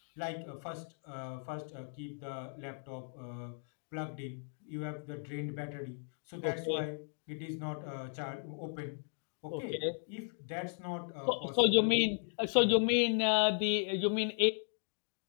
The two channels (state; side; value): silent; right; 54 dB below the other